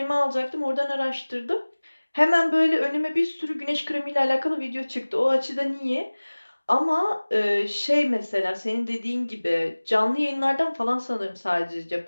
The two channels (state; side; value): inverted; both; correlation -1.00